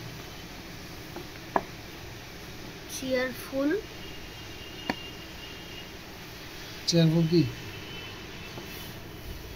cheerful, cheerful কি?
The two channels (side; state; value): both; identical; correlation 1.00